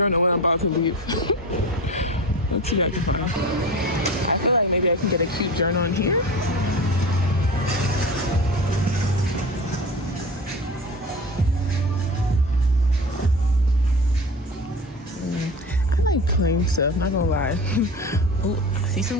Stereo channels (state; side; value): normal; both; correlation 0.32